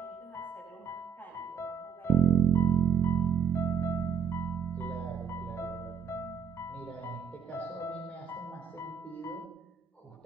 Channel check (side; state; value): left; quieter; 6.7 dB